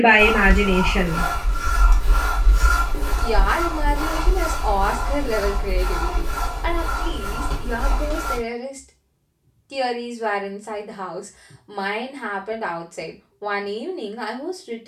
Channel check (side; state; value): both; identical; correlation 1.00